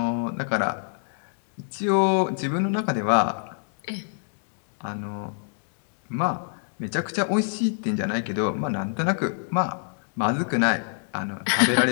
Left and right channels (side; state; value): right; silent; digital silence